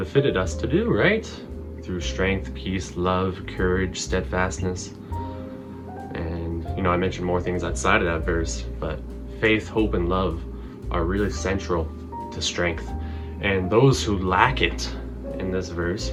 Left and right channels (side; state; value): both; identical; correlation 1.00